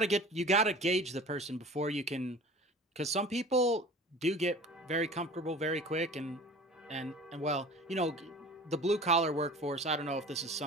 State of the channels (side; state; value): both; normal; correlation 0.41